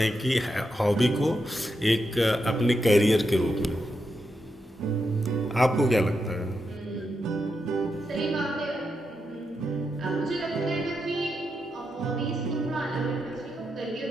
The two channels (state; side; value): normal; both; correlation 0.85